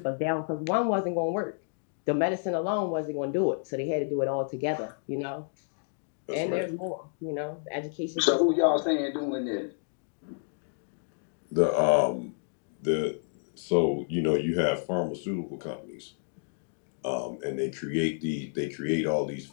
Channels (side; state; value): right; silent; digital silence